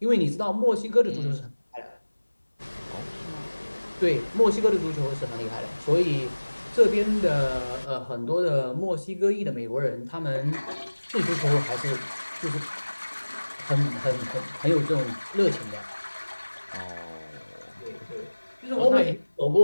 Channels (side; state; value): both; inverted; correlation -1.00